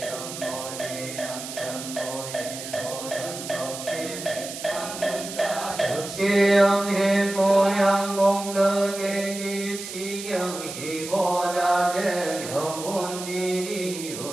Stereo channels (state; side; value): noise; right; hiss, 9 dB below the sound